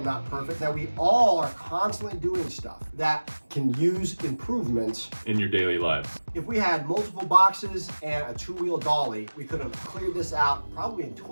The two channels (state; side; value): inverted; both; correlation -1.00